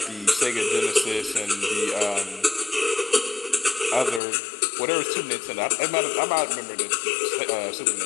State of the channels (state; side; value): drops out; right; at 4.2 s